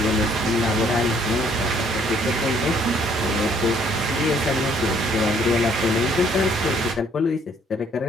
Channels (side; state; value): both; normal; correlation 0.63